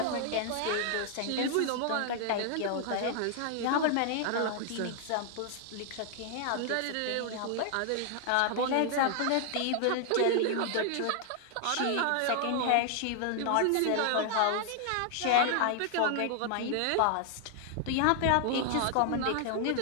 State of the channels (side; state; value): both; different; correlation 0.00